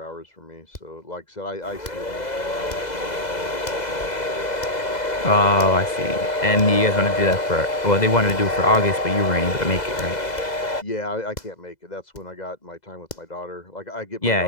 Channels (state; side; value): late; right; 2.0 ms